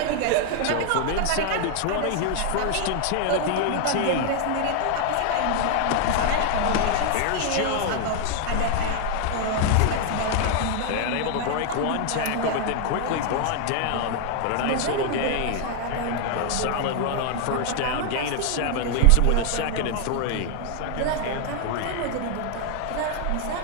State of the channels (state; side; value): different; both; correlation 0.00